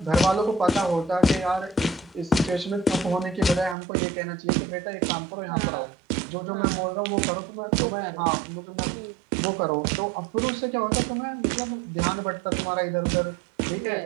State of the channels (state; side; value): drops out; left; at 3.8 s